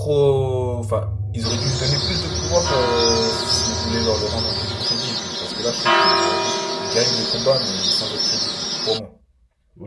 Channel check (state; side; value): identical; both; correlation 1.00